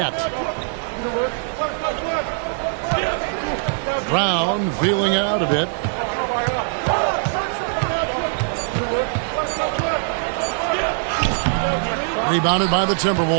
Brown feeling it out a bit. Rebounded by the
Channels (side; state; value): left; silent; digital silence